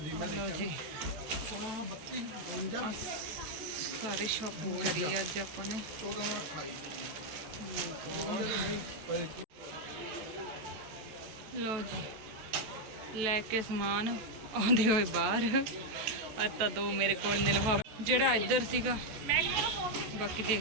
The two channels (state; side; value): late; left; 14 ms